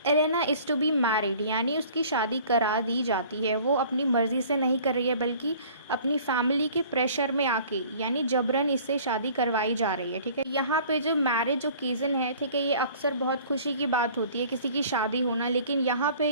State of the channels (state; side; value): inverted; both; correlation -0.50